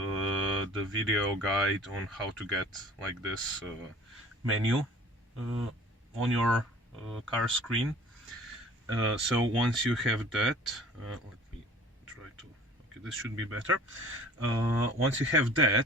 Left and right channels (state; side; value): normal; both; correlation 0.48